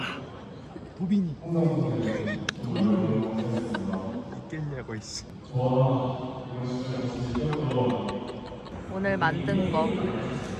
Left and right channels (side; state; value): both; identical; correlation 1.00